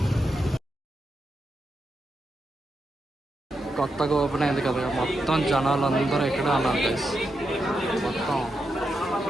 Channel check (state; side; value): normal; both; correlation 0.85